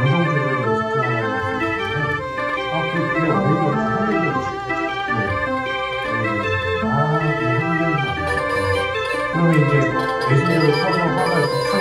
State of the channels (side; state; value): both; identical; correlation 1.00